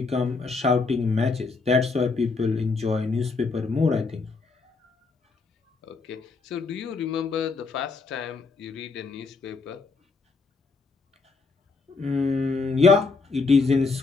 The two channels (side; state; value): right; quieter; 4.2 dB